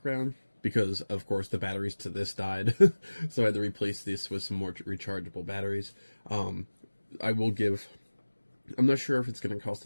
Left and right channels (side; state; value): both; inverted; correlation -1.00